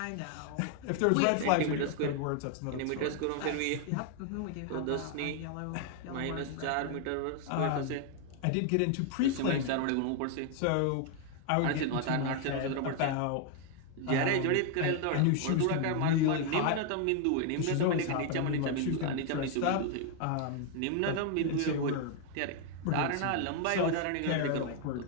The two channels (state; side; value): different; both; correlation 0.00